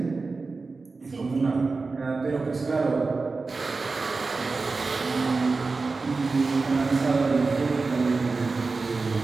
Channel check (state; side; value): quieter; left; 4.0 dB